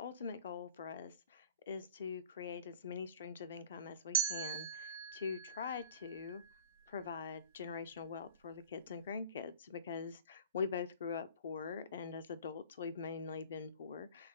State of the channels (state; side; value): inverted; both; correlation -0.43